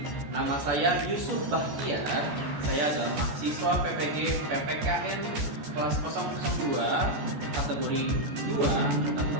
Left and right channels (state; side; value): late; left; 14 ms